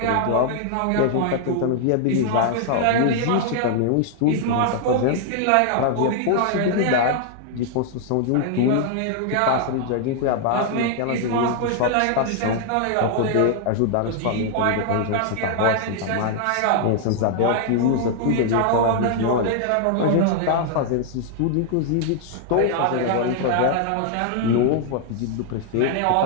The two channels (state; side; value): different; both; correlation 0.00